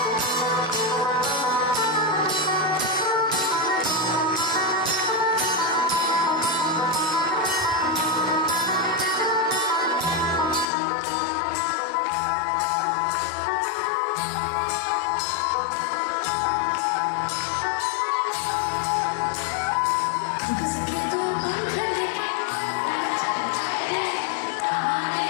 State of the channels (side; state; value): right; drops out; at 10.7 s